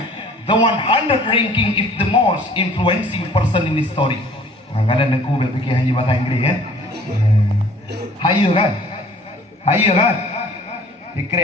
The 100 Ranking is the most influencing person in history. Kadang-kadang aku berfikir hanya bahasa Inggeris ya. Haya kan? Haya kan?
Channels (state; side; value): normal; both; correlation 0.53